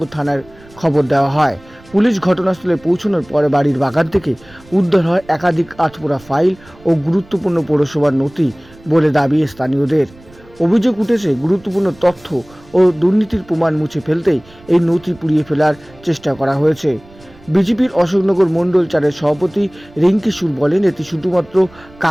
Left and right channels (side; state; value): right; noise; rumble, 25 dB below the sound